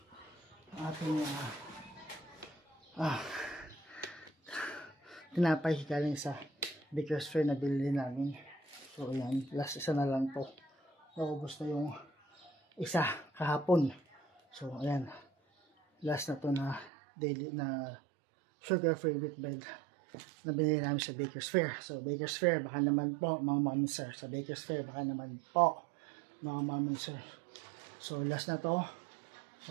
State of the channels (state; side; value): drops out; left; at 16.9 s